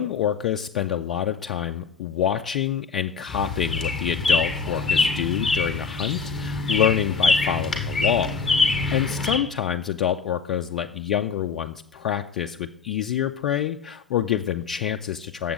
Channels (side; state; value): right; quieter; 6.0 dB